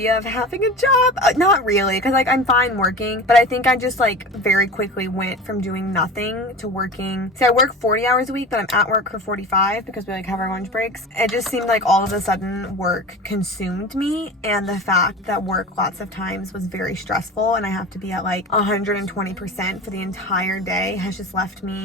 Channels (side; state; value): both; normal; correlation 0.34